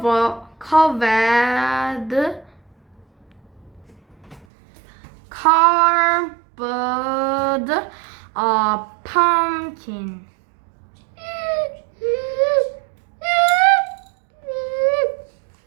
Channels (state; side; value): drops out; left; at 4.5 s